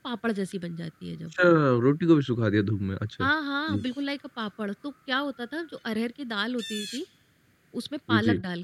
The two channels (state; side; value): identical; both; correlation 1.00